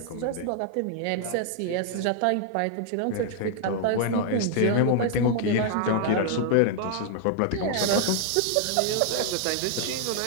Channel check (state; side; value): different; both; correlation 0.00